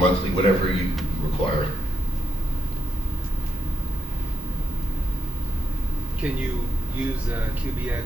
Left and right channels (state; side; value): normal; both; correlation 0.82